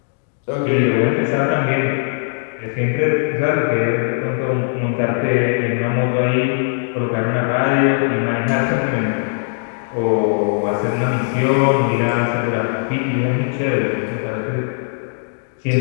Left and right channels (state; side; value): silent; right; digital silence